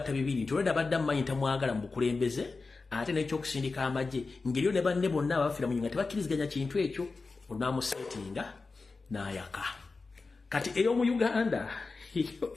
bibiri nti oleda badda mmanyi tamwagala mu bukulembeze ate n'ekyokusindika amagye ngeriyo ne banne bonna abafira mu nyinga tebakkiriziganya kintu ekyo onamusetinga n'ayaka. Kati eyo mu Uganda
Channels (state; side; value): quieter; right; 4.0 dB